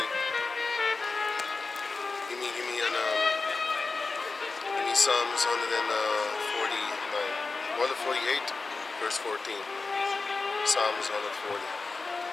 give me Psalms 148, verse 14. Psalms 148.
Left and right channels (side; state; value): right; quieter; 4.0 dB